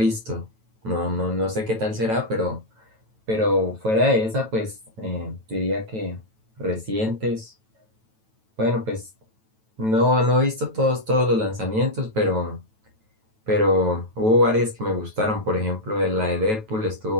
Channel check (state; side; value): late; left; 9.1 ms